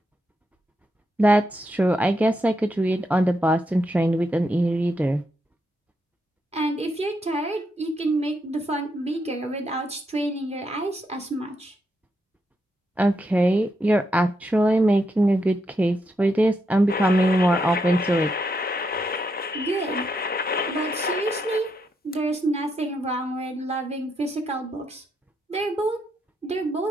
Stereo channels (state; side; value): normal; both; correlation 0.80